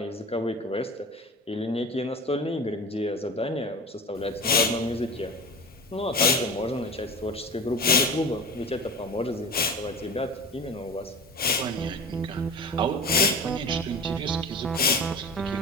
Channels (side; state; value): both; normal; correlation 0.31